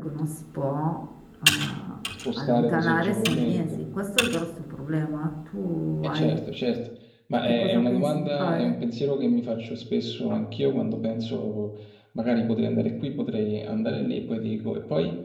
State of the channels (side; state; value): both; identical; correlation 1.00